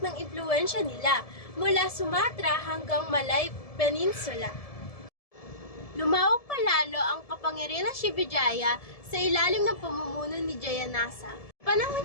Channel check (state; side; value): late; right; 1.7 ms